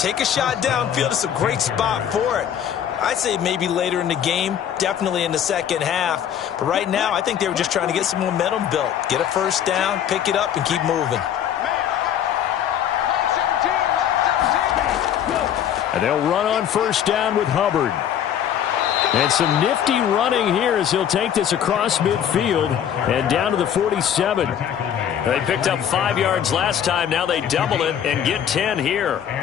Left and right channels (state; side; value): quieter; right; 9.5 dB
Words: a shot downfield. It's a great spot for it. I'd say maybe later in the game, definitely in the second half. But right now, I think they were just trying to get some momentum built. Get a first down, pick it up, and keep moving. And they'll run on first down with Hubbard. And some nifty running here as he'll take this across midfield and down to the 47. They picked up 5 yards last time. Now they double it and get 10 here.